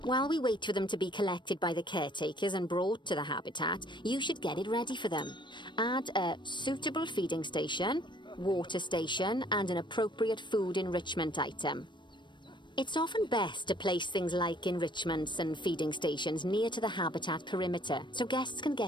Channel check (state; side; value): late; right; 0.22 ms